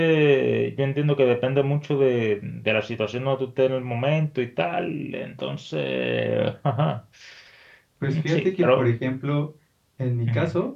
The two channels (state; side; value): identical; both; correlation 1.00